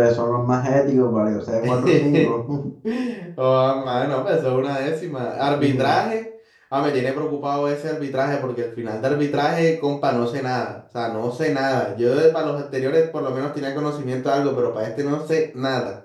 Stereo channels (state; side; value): identical; both; correlation 1.00